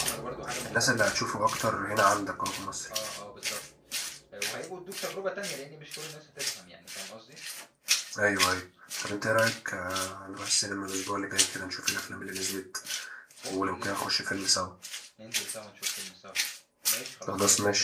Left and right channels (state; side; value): identical; both; correlation 1.00